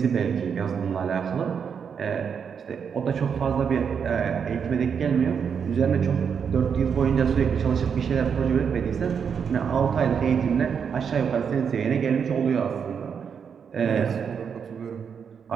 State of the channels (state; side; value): quieter; left; 6.9 dB